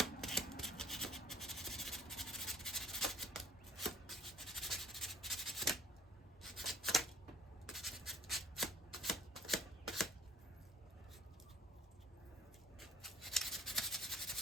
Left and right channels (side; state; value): both; normal; correlation 0.54